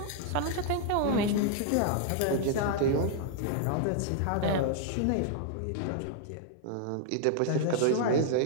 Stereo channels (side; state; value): both; different; correlation -0.01